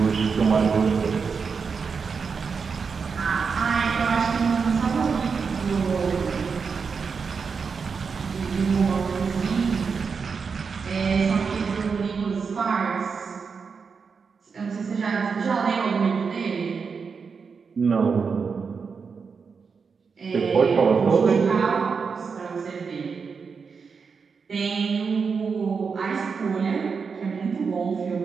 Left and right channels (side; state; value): left; quieter; 5.5 dB